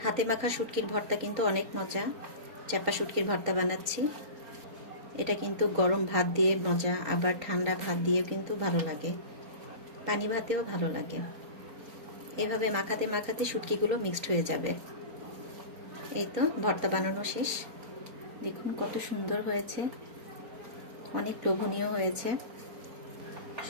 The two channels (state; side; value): late; left; 4.3 ms